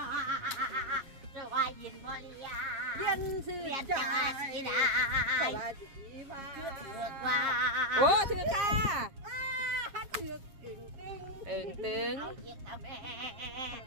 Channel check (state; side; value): late; left; 7.5 ms